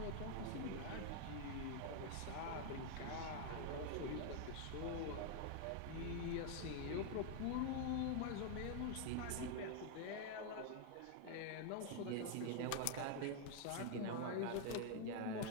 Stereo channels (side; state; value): both; different; correlation 0.00